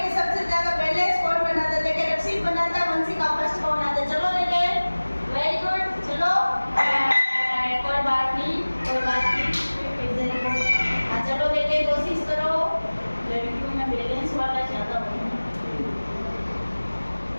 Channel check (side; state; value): both; inverted; correlation -1.00